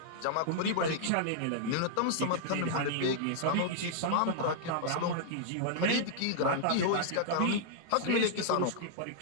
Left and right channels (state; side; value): different; both; correlation -0.01